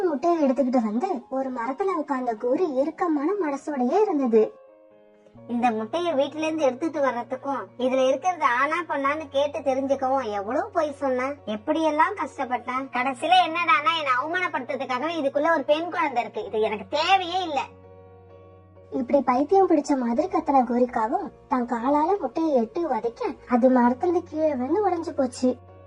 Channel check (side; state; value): both; identical; correlation 1.00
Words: முட்டையை எடுத்துக்கிட்டு வந்து ஒரு மரத்துல உட்கார்ந்த கோரி இறுக்கமான மனசோடயே இருந்தது. இந்த முட்டைய வீட்டுல இருந்து எடுத்துட்டு வர்றதுக்கும் இதுல இருக்கிறது ஆனா பொண்ணான்னு கேட்டு தெரிஞ்சுக்கவும் எவ்வளவு போய் சொன்னேன், எப்படி எல்லாம் கஷ்டப்பட்டேன். கடைசியில என்னடானா என்ன அவமானப்படுத்துறதுக்காகவே இதுக்குள்ள ஒரு பெண் குழந்தை இருக்கு. இது எனக்கு தேவையே இல்ல. இப்படி பைத்தியம் பிடிச்ச மாதிரி கத்தன கோரிக்காவும் தன் காலால முட்டையை எட்டு உதைக்க அது மரத்துல கீழே வந்து உடைஞ்சு போச்சு.